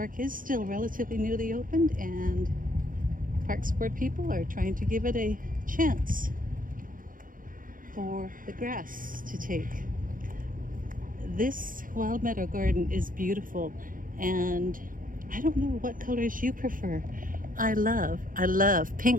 is still relatively newly opened and Parks Board people are trying to give it a chance for the grass to take. This wild meadow garden is beautiful, and I don't know what colors you prefer. I love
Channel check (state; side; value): late; left; 0.40 ms